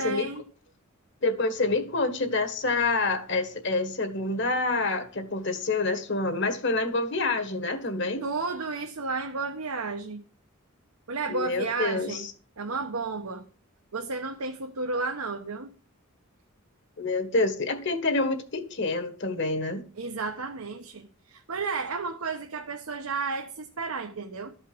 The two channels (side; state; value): both; normal; correlation -0.16